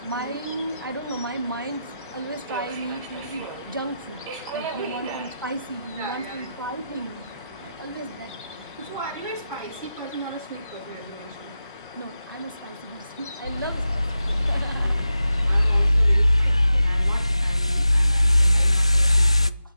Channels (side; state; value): both; inverted; correlation -0.91